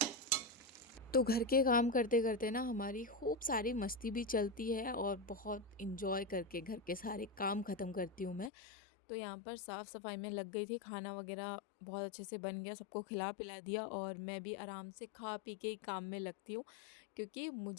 तो घर के काम करते करते ना हमारी खूब सारी मस्ती भी चलती है और बहुत इंजॉय करके घर के सारे काम ख़त्म करती हूँ मैं। तो यहाँ पर साफ़ सफाई में लग गई थी, खाना वगैरह बहुत अच्छे से बन गया, सबको खिला पिला दिया और मैं भी आराम से खा पी के ही काम में लगती हूँ। क्योंकि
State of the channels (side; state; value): right; drops out; at 8.5 s